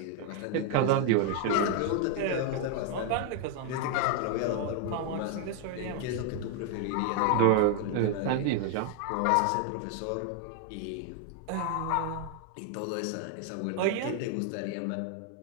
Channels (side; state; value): both; different; correlation 0.01